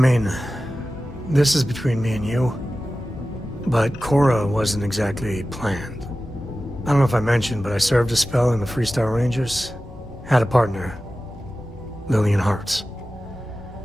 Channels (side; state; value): both; normal; correlation 0.95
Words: this is between me and you, but Cora wasn't exactly planned. I don't know if I mentioned, but I served a spell in the Freestar Rangers. Had a partner, Lillian Hartz.